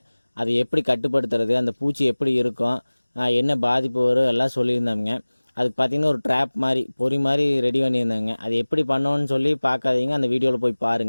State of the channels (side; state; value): both; inverted; correlation -1.00